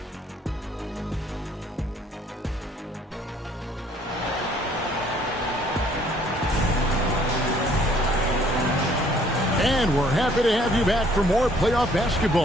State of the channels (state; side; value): normal; both; correlation 0.61